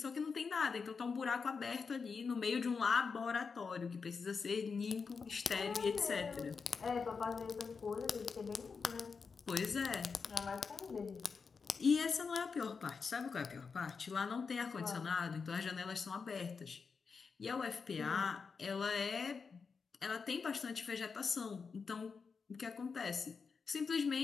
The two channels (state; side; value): quieter; right; 5.3 dB